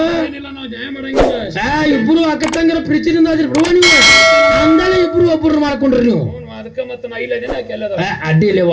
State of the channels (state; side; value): identical; both; correlation 1.00